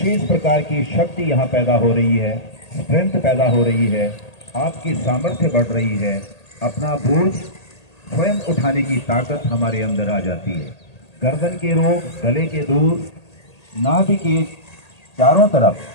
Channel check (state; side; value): late; right; 1.8 ms